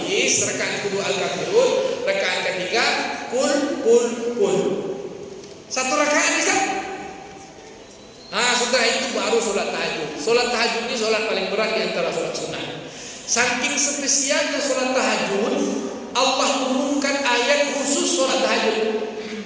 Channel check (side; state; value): both; identical; correlation 1.00